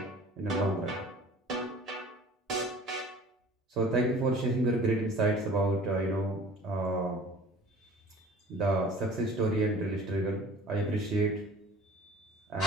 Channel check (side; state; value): both; normal; correlation 0.46